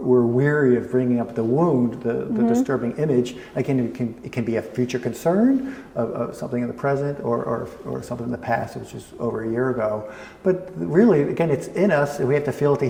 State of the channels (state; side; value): identical; both; correlation 1.00